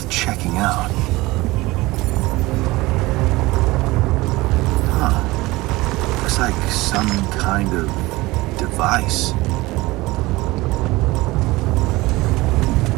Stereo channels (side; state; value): left; quieter; 20.5 dB